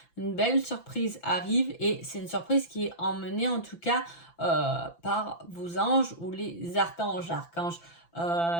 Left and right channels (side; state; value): right; late; 5.9 ms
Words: Une belle surprise arrive et c'est une surprise qui est emmenée en tout cas par vos anges ou les archanges. Archange